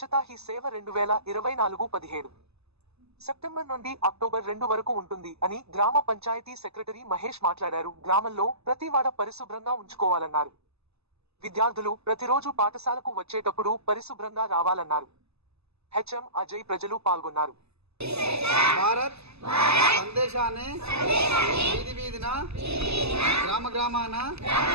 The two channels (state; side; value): late; left; 0.79 ms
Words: హీ సేవ 2024 17 సెప్టెంబర్ నుండి అక్టోబర్ 2 వరకు ఉంటుంది అని గ్రామ పంచాయతీ సెక్రటరీ మహేష్ మాట్లాడారు. గ్రామంలో ప్రతి వాడ పరిశుభ్రంగా ఉంచుకోవాలన్నారు. విద్యార్థులు ప్రతిరోజు పాఠశాలకు వచ్చేటప్పుడు పరిశుభ్రంగా రావాలన్నారు. హెచ్ఎం అజయ్ ప్రజలు పాల్గొన్నారు. భారత్ సందేశాన్ని వీధి వీధిన గ్రామ గ్రామాన